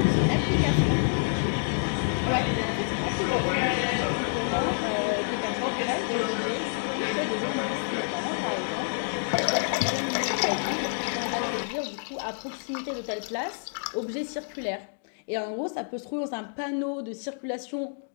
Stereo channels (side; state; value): right; silent; digital silence